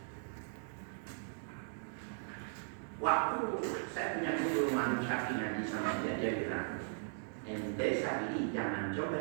Waktu saya punya guru Manu Syafi'i ngaji sama dia bilang, ente Syafi'i jangan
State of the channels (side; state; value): left; silent; digital silence